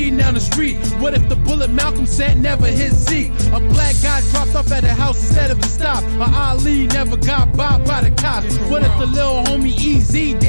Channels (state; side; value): inverted; both; correlation -1.00